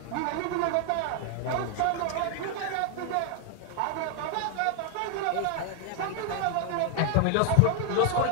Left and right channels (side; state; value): both; different; correlation 0.00